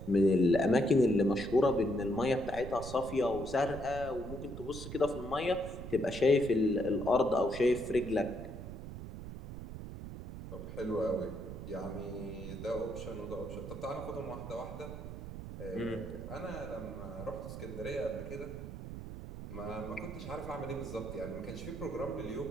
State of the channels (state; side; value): noise; right; rumble, 9 dB below the sound